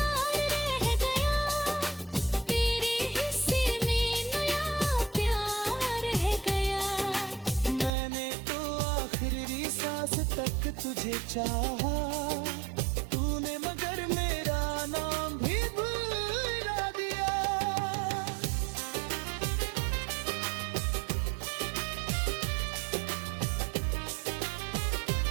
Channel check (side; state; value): left; drops out; at 7.9 s